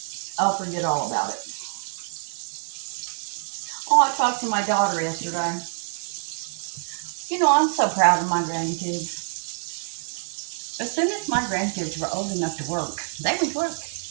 I'll forget all about it. Oh, I talked to my daughter yesterday. You know, I'm so proud of my grandkids. As soon as my grandkids were old enough to work, they would work.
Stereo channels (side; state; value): left; silent; digital silence